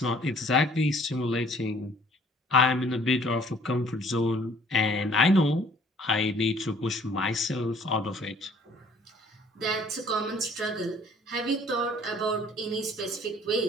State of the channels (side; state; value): both; normal; correlation 0.57